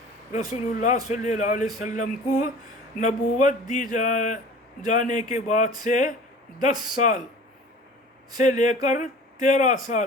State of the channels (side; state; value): both; normal; correlation 0.42